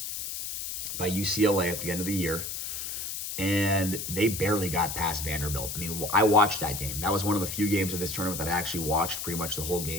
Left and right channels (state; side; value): noise; left; hiss, 5 dB below the sound